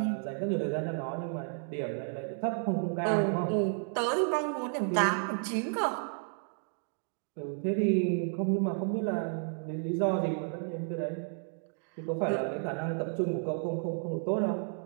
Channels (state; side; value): silent; left; 56 dB below the other